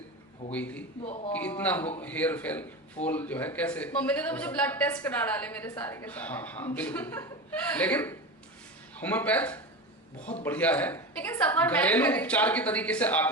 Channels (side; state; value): both; normal; correlation 0.25